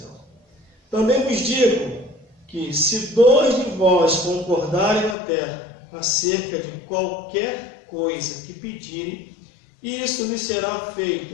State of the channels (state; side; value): drops out; right; at 5.2 s